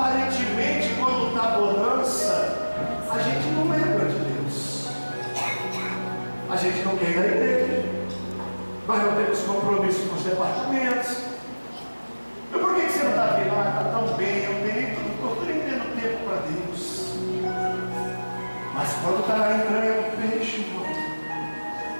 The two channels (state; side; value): inverted; both; correlation -1.00